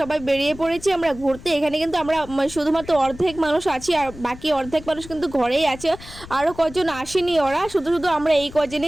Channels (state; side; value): noise; left; rumble, 16 dB below the sound